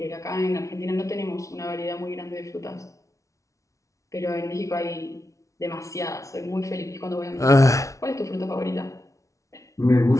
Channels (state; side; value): late; right; 0.15 ms